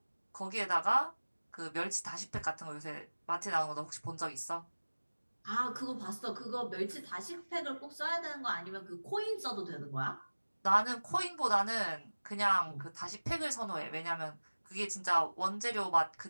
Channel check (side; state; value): both; inverted; correlation -1.00